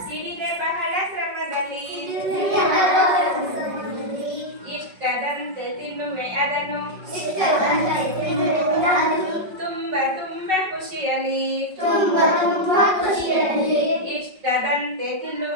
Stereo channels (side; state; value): left; late; 5.3 ms